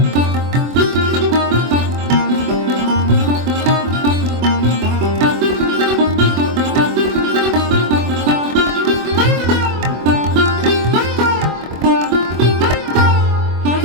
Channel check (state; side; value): late; left; 24 ms